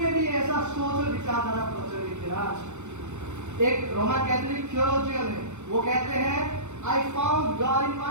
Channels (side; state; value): left; late; 0.83 ms